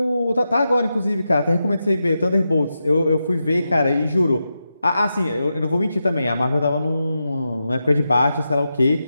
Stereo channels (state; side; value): inverted; both; correlation -0.88